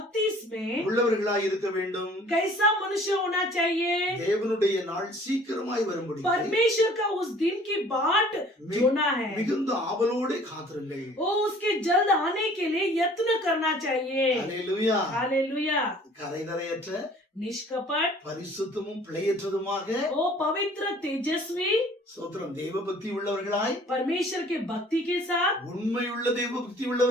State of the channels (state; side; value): normal; both; correlation 0.52